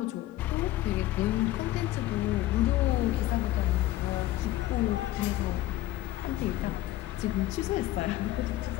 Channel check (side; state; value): right; quieter; 15.5 dB